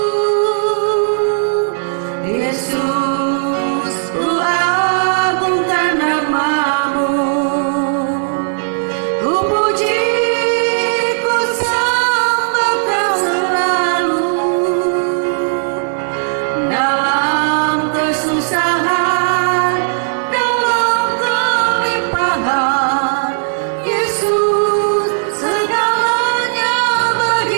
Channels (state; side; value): silent; left; digital silence